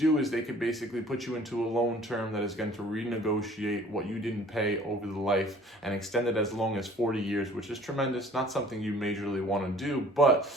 is they could basically put you into a loan term that is going to renegotiate what you didn't pay over the life and extend it as long as 40 years, which is tremendous. Not something you majorly want to do, but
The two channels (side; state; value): both; normal; correlation 0.52